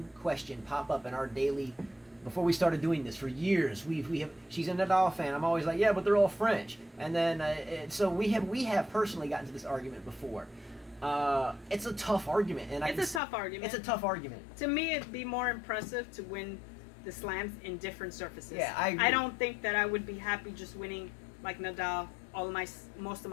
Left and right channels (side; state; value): right; drops out; at 13.2 s